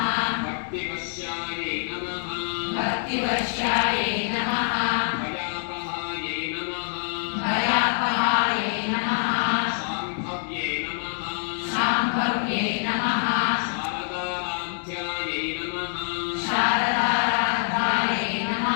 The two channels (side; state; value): right; silent; digital silence